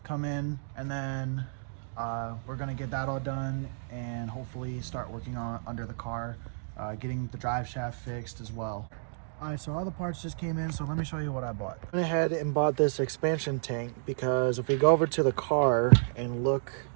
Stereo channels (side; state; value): left; silent; digital silence